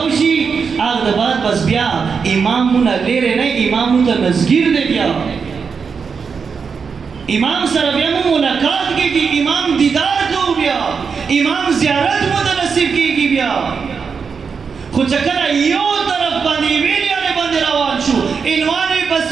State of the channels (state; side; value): quieter; left; 5.7 dB